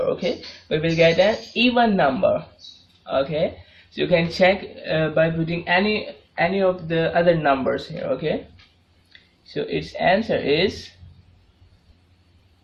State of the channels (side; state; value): both; identical; correlation 1.00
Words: we will get an even number. Okay, so you can check by putting any of the other numbers here. Okay, so its answer is